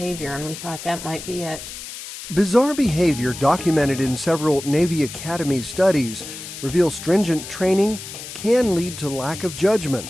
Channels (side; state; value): left; noise; hiss, 11 dB below the sound